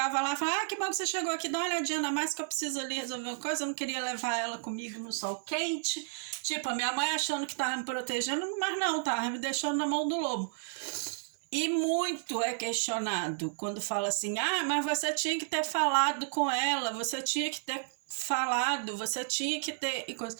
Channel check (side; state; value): left; silent; 56 dB below the other